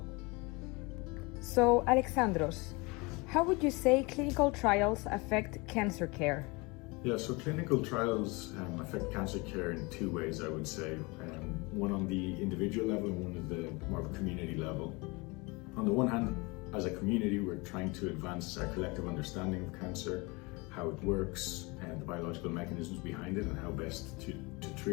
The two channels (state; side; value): quieter; right; 26.5 dB